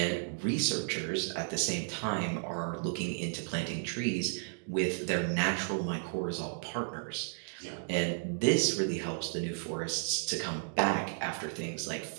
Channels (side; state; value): left; silent; digital silence